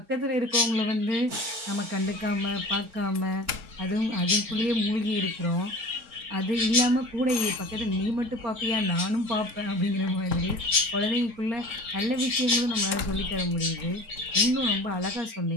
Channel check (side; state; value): left; late; 4.5 ms